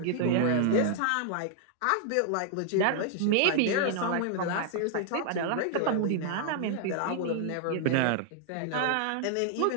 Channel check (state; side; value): different; both; correlation 0.00